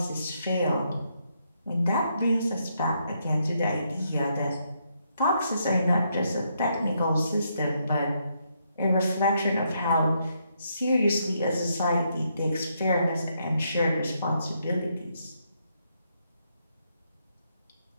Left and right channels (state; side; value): inverted; both; correlation -0.77